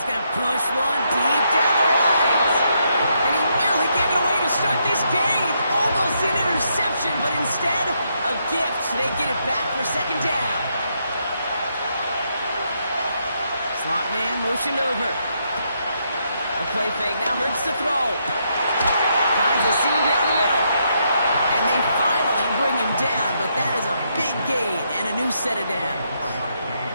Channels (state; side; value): inverted; both; correlation -0.77